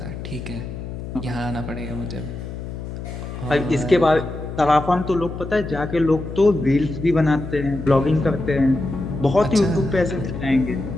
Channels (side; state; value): left; noise; hum, 8 dB below the sound